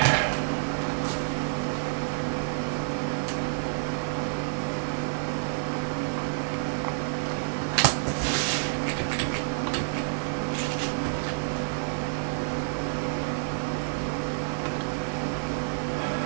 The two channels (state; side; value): silent; left; digital silence